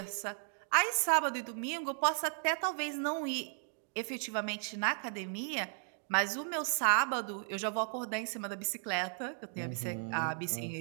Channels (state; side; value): silent; left; 54 dB below the other